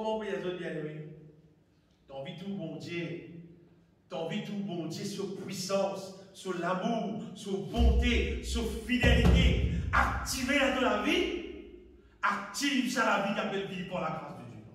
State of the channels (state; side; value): identical; both; correlation 1.00